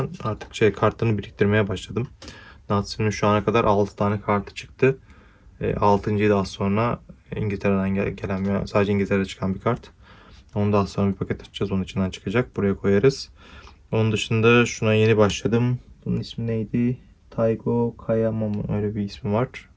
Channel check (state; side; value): identical; both; correlation 1.00